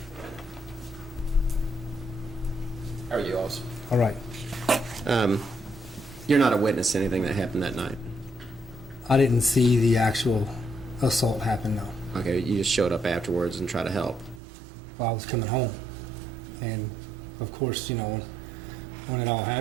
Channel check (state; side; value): drops out; left; at 14.4 s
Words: How are you, officer? All right. You're not a witness to anything that happened that night? I didn't see the actual assault happen, no. Okay, you just showed up afterwards and tried to help. Well, I was coming home, and of course, when